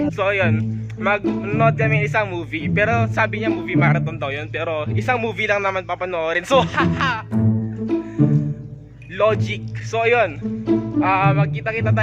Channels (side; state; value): both; identical; correlation 1.00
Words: So ayun, mag-nood kami isang movie. Pero sabi niya movie marathon daw yun. Pero isang movie lang naman papanoorin. So haha! Logic. So ayun, magkita-kita